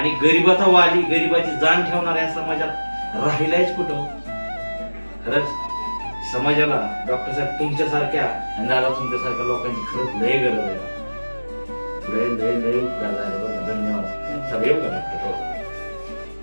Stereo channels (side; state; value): both; inverted; correlation -1.00